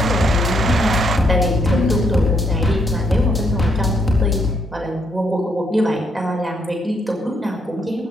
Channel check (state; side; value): normal; both; correlation 0.74